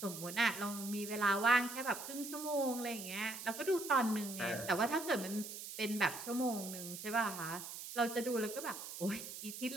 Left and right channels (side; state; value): right; noise; hiss, 9 dB below the sound